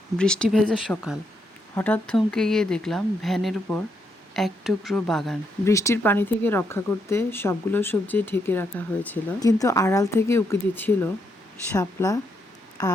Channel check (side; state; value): both; normal; correlation 0.78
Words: বৃষ্টি ভেজা সকাল, হঠাৎ থমকে গিয়ে দেখলাম ভ্যানের উপর এক টুকরো বাগান। বৃষ্টির পানি থেকে রক্ষা করতে সবগুলো সবজি ঢেকে রাখা হয়েছিল, কিন্তু আড়াল থেকে উঁকি দিচ্ছিল শাপলা